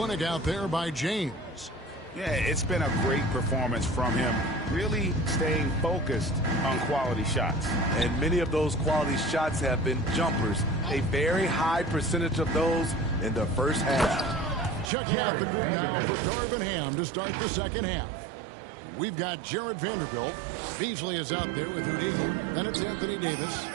out there by James. Yeah, it's been a great performance from him, really staying focused on quality shots. And many of those quality shots have been jumpers, a very high percentage of those in the first half. Check out the group now for Darvin Ham to start the second half. We've got Jared Vanderbilt. Beasley is out there with Houdini. Then it's Anthony Davis.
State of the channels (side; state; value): left; drops out; at 14.9 s